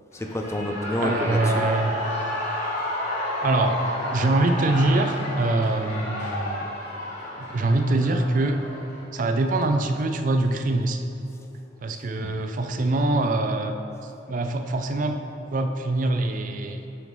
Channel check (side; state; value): both; normal; correlation 0.57